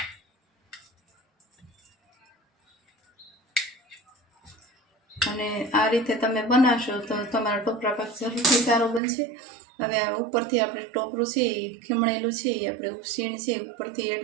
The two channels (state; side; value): drops out; left; at 9.0 s